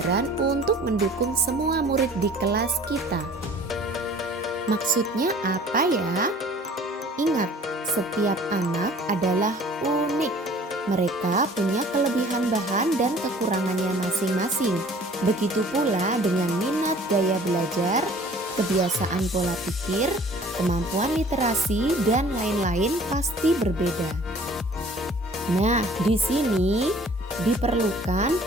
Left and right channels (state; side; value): normal; both; correlation 0.51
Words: untuk mendukung semua murid di kelas kita. Maksudnya apa ya? Ingat, setiap anak adalah unik. Mereka punya kelebihan bahan dan kekurangannya masing-masing. Begitu pula dengan minat gaya belajar, kebiasaan pola pikir, kemampuan literasi, dan lain-lain pasti berbeda. Nah, di sini diperlukan